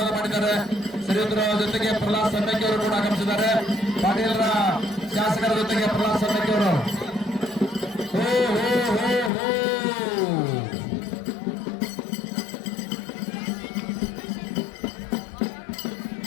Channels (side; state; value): right; drops out; at 9.3 s